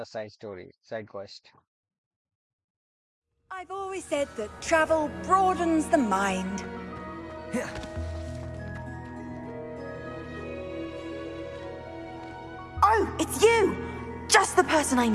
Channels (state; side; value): identical; both; correlation 1.00